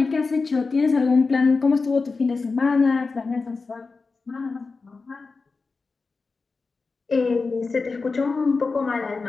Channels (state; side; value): quieter; right; 4.2 dB